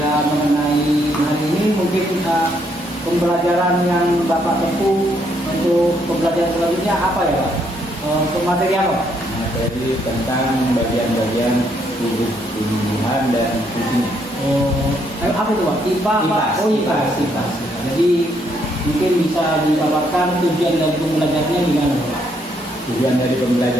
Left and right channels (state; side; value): normal; both; correlation 0.72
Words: mengenai hari ini mungkin pembelajaran yang Bapak tempuh untuk pembelajaran selanjutnya apa ya Pak? Untuk materi apa? Materi tentang bagian-bagian tubuh tumbuhan dan fungsinya. Apa itu Pak? IPA Pak? IPAS. Jadi mungkin bisa dipaparkan tujuan dari pembelajarannya gimana Pak? Tujuan dari